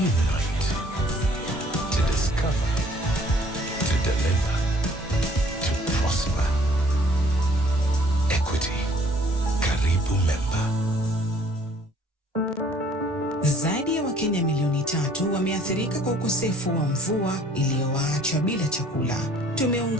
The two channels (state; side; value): normal; both; correlation 0.57